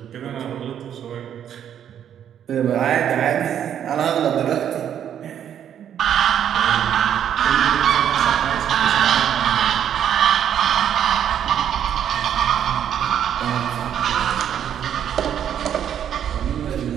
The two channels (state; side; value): quieter; left; 9.5 dB